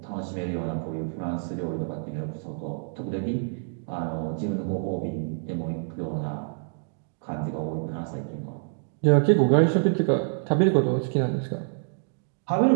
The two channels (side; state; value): left; silent; digital silence